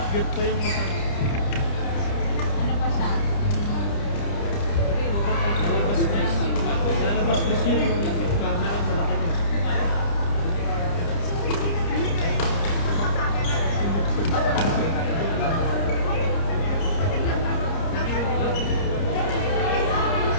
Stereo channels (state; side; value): late; right; 30 ms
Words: Cute pa yung mata. Ano pa siya? Lalabas this year yung camera malaki na.